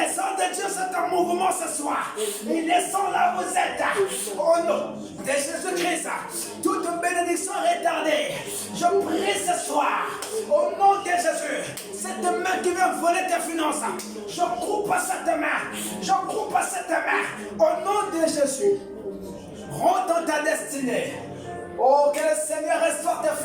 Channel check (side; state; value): both; identical; correlation 1.00